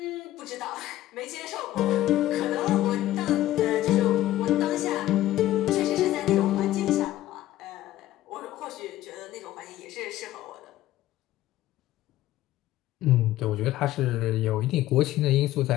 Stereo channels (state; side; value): quieter; right; 14.6 dB